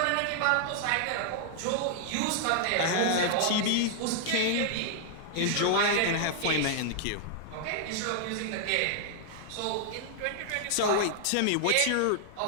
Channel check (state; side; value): different; both; correlation -0.01